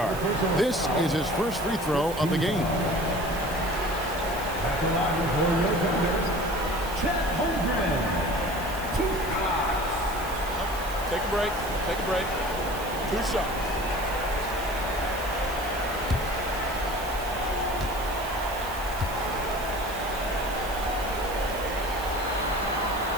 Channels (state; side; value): noise; right; hiss, 14 dB below the sound